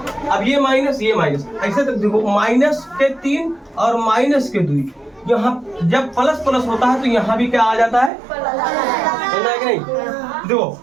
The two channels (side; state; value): left; drops out; at 8.1 s